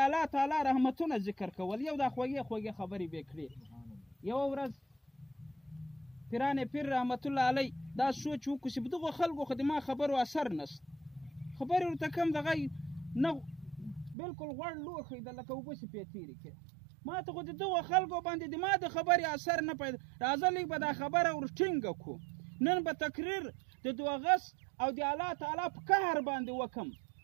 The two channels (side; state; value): left; drops out; at 14.2 s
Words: الله تعالی رحمتونه ذکر کول یو دا خوږې خبرې به کړې یو ورځ پیران پیر رحمت الله علی دا سوچ وکړو چې په دغو خلکو خو د ما خبرو اثر نشته خبرې ورته کوم دغه نه بلکل غوړ لوښی ده لکه اوبه چې پې تېرې کړې ما ته خو د دغو خلکو باندې د ما د خبرې اثر نه پیدا راځه لږ به دا خبره ور ټینګه کړو نن به تقریر د دوغس او د الله تعالی په قهر باندې وکم